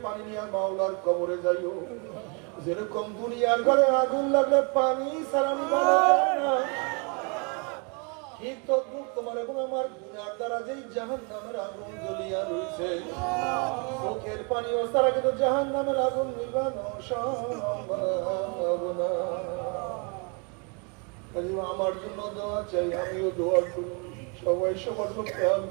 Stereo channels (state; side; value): quieter; left; 33.9 dB